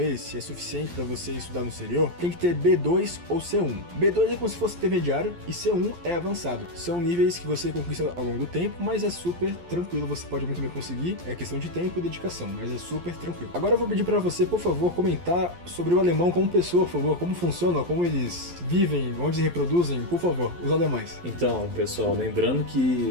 se é suficiente para você estudar no exterior, tem que ter B2 ou C1. B2 é como se fosse intermediário e C1 é avançado. São níveis que você conquista ao longo do tempo, mas é super tranquilo, você pode muito bem conseguir. É questão de tempo e dedicação, mas é super tranquilo. Agora eu vou pedir para você, por favor, comentar sobre o alemão como pessoa, por favor, como funciona, como eles vivem, onde se reproduzem, por favor, os alemães. Então, pessoal, lembrando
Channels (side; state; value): left; late; 11 ms